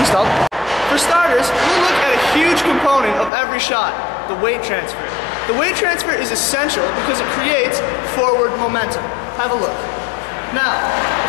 Please stop. For starters, we'll look at a huge component of every shot, the weight transfer. The weight transfer is essential because it creates forward momentum. Have a look. Now,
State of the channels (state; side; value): drops out; right; at 3.3 s